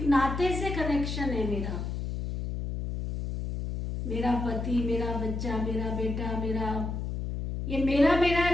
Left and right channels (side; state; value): left; noise; hum, 3 dB below the sound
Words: नाते से कनेक्शन है मेरा। मेरा पति, मेरा बच्चा, मेरा बेटा, ये मेरा